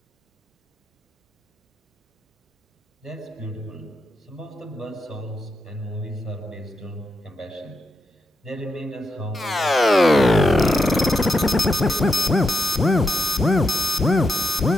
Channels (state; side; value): normal; both; correlation 0.85